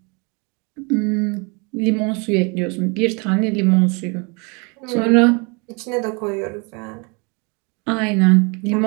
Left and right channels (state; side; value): quieter; left; 31.3 dB